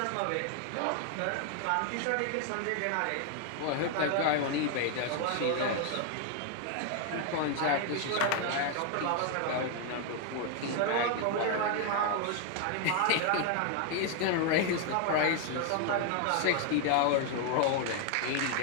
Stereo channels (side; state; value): both; different; correlation 0.01